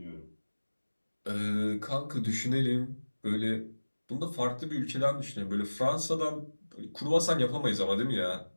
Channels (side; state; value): both; inverted; correlation -1.00